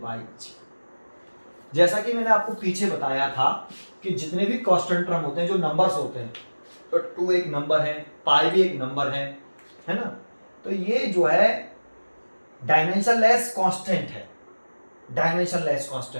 बाई जी। जैसा कि मैंने आपको पीछे बताया था कि जितने भी कांस्टेंट टर्म होते हैं, जो नंबर्स होते हैं, तो 2 एक नंबर है, पाई भी एक नंबर है ना। तो ये जो है डायमेंशनलेस कांस्टेंट है, डायमेंशनलेस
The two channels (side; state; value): both; inverted; correlation -1.00